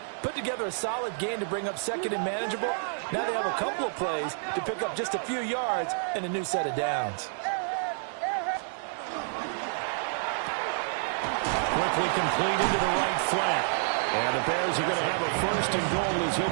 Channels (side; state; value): left; silent; digital silence